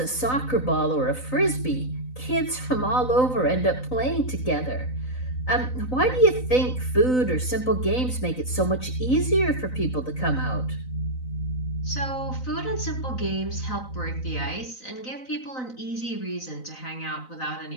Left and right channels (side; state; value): right; late; 3.9 ms